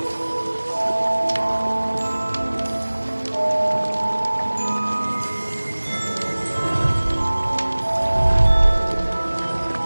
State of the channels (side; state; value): both; inverted; correlation -1.00